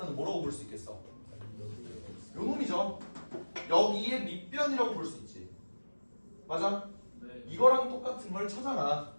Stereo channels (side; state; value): both; inverted; correlation -1.00